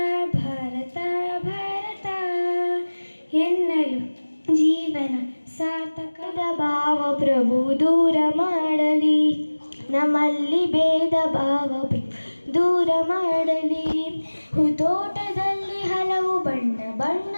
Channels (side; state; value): both; inverted; correlation -1.00